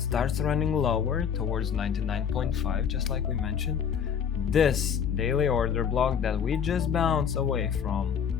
running lower towards 99.5, just like we mentioned, this daily order block that we just bounced away from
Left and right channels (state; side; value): quieter; right; 7.7 dB